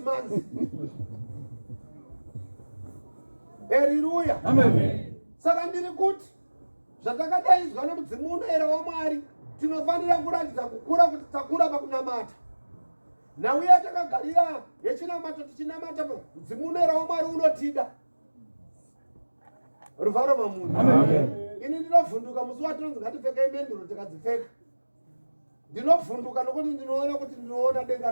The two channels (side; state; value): both; inverted; correlation -1.00